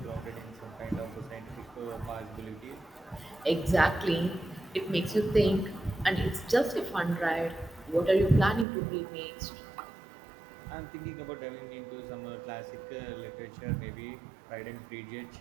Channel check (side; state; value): left; drops out; at 8.7 s